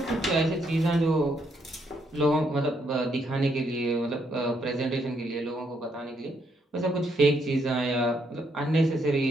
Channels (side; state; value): both; normal; correlation 0.74